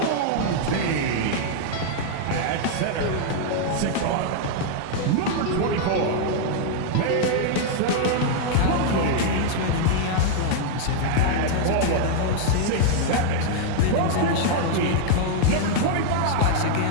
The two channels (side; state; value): both; different; correlation 0.00